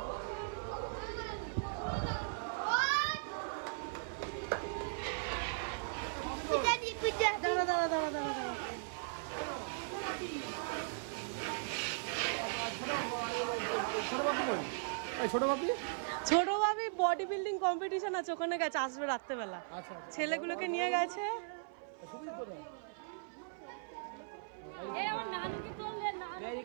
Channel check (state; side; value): silent; left; 52 dB below the other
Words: ছোট ভাবি বডি বিল্ডিং কম্পিটিশন আছে, ওখানে গেছে, আসবে রাত্রেবেলা। ছেলেগুলোকে নিয়ে গেছে।